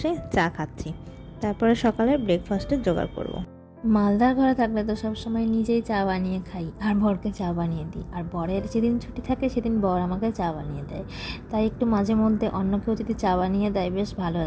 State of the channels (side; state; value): both; identical; correlation 1.00